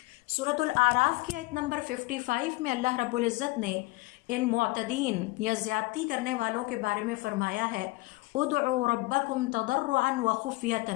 سورۃ الاعراف کی آیت نمبر 55 میں اللہ رب العزت نے ان معتدین یا زیادتی کرنے والوں کے بارے میں فرمایا ہے ادعوا ربکم تضرعا وخفیۃ،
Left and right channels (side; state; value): right; quieter; 22.0 dB